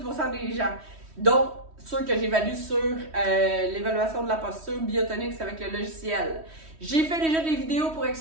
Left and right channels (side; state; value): left; late; 3.1 ms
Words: des gens. Donc, ceux que j'évalue sur l'évaluation de la posture Biotonix avec le logiciel. J'ai fait déjà des vidéos pour